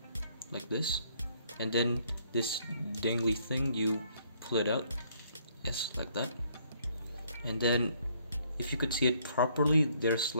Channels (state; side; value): inverted; both; correlation -0.66